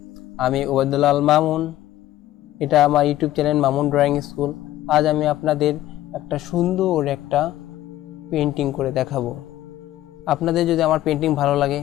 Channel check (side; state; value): right; quieter; 14.4 dB